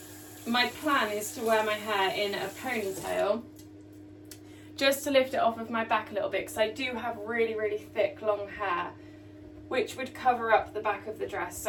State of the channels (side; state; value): both; identical; correlation 1.00